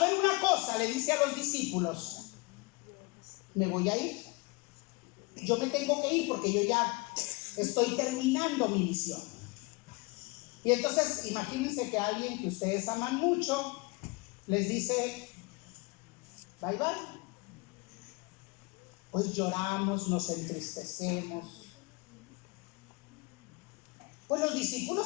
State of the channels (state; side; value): quieter; right; 27.0 dB